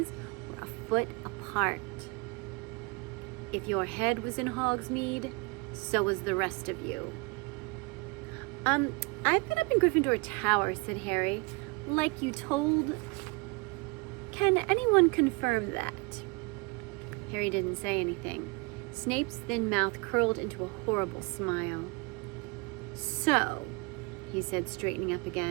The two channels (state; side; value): quieter; left; 27.0 dB